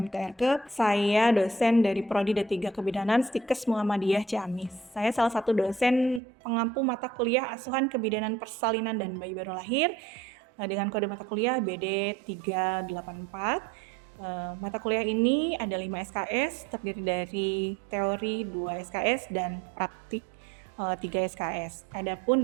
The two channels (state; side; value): drops out; left; at 6.2 s